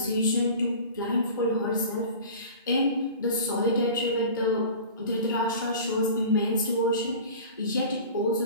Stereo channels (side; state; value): both; inverted; correlation -0.39